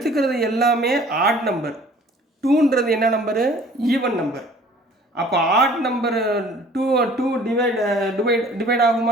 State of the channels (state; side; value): normal; both; correlation 0.52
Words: எல்லாமே ஆட் நம்பர். 2ன்றது என்ன நம்பரு? Even number. அப்போ ஆட் நம்பர் 2 டிவைட்